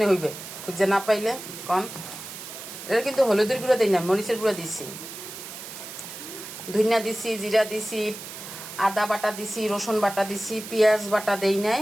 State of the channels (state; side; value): noise; right; hiss, 11 dB below the sound